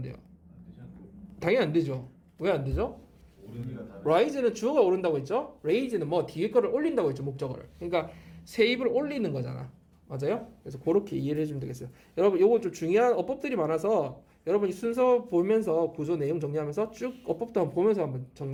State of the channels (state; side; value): identical; both; correlation 1.00